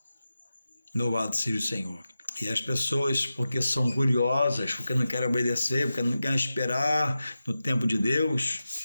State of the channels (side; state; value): both; inverted; correlation -0.93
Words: Louvado seja o Senhor. E as pessoas, porque são curiosas, porque não querem obedecer, porque não querem esperar no tempo de Deus,